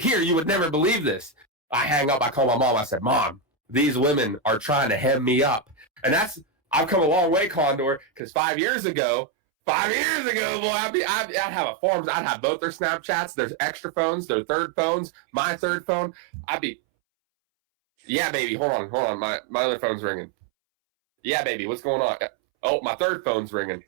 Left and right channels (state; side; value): drops out; left; at 8.2 s